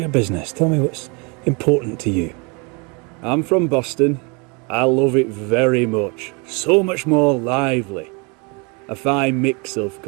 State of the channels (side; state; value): left; quieter; 31.3 dB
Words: business. Tell me what's important to you. I'm from Boston. I love it very much. So much more lively. A fine mix of